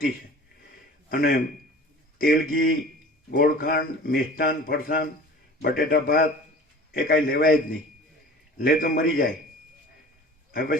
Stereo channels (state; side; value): normal; both; correlation 0.42